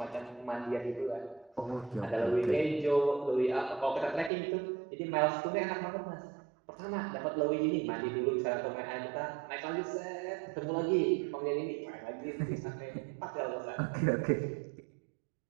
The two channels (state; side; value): drops out; left; at 4.3 s